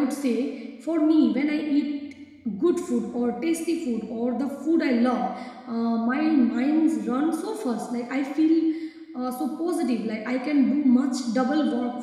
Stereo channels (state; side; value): identical; both; correlation 1.00